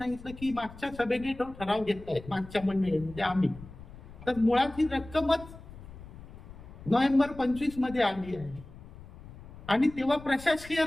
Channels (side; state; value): left; noise; rumble, 17 dB below the sound